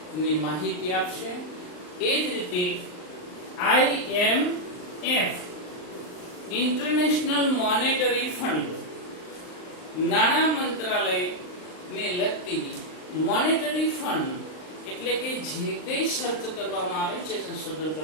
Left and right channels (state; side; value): late; right; 39 ms